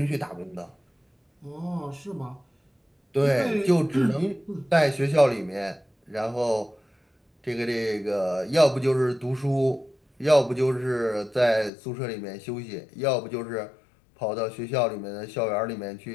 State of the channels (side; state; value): right; drops out; at 11.7 s